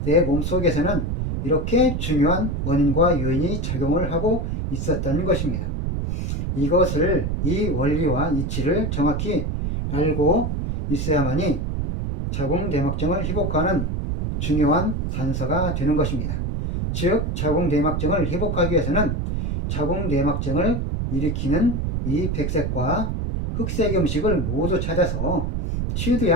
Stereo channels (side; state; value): right; noise; rumble, 1 dB below the sound